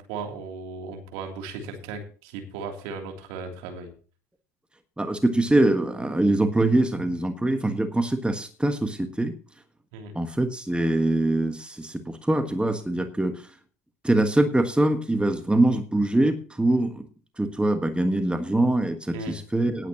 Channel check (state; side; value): normal; both; correlation 0.91